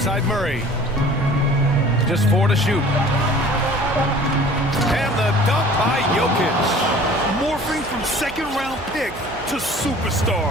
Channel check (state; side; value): noise; right; hum, 15 dB below the sound